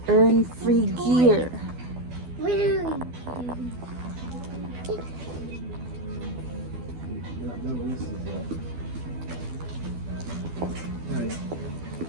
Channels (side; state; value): left; late; 12 ms